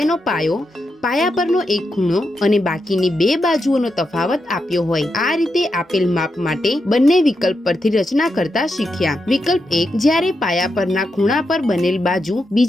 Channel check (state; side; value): normal; both; correlation 0.85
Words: પાયો પાયા પરનો એક ખૂણો અને બાકીની બે બાજુઓનો તફાવત આપ્યો હોય। આ રીતે આપેલ માપ માટે બંને વિકલ્પ પરથી રચના કરતા શીખ્યા। વિકલ્પ 1, જ્યારે પાયા પરના ખૂણા પર બનેલ બાજુ